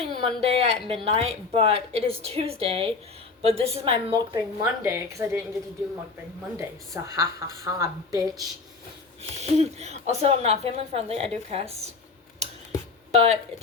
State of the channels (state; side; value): quieter; right; 4.3 dB